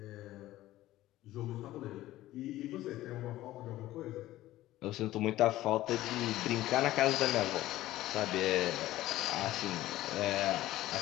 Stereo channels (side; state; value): right; quieter; 15.4 dB